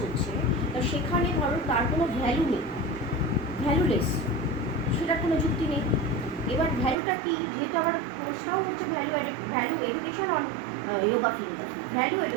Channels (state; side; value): drops out; left; at 7.0 s